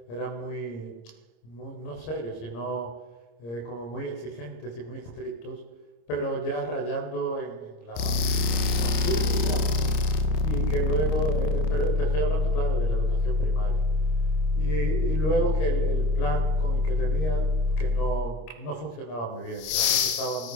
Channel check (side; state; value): right; late; 26 ms